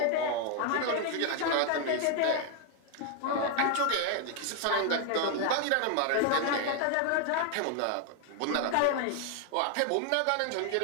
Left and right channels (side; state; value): both; different; correlation 0.01